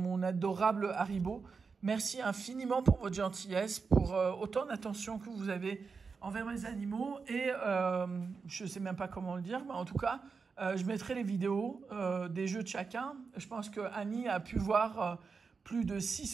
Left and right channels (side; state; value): left; quieter; 5.1 dB